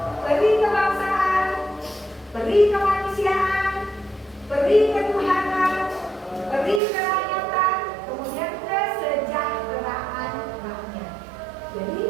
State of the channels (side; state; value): left; drops out; at 6.8 s